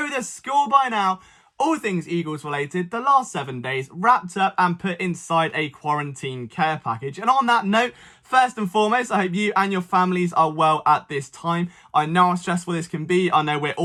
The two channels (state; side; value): identical; both; correlation 1.00